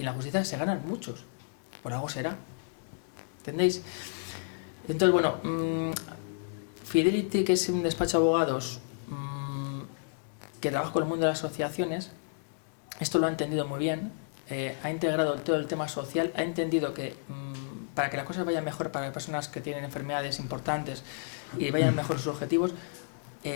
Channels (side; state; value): right; silent; digital silence